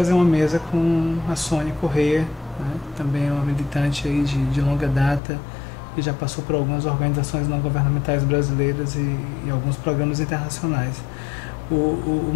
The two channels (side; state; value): right; drops out; at 5.2 s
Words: uma mesa com a Sônia Corrêa, né, também é uma militante aí de longa data e já passou por algumas organizações não governamentais brasileiras e alguns programas internacionais. O